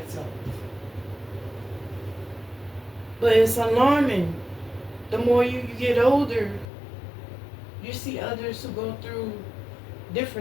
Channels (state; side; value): drops out; right; at 6.7 s